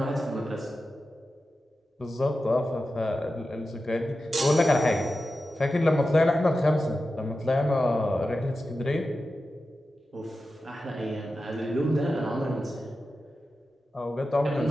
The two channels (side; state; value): both; normal; correlation 0.92